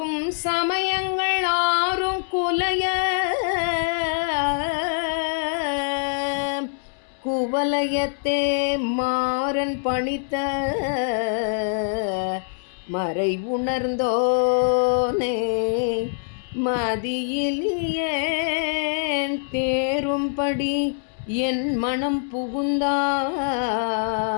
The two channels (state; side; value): silent; right; 63 dB below the other